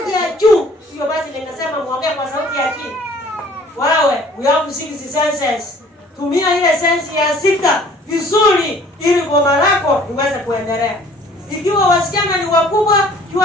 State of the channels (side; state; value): both; normal; correlation 0.53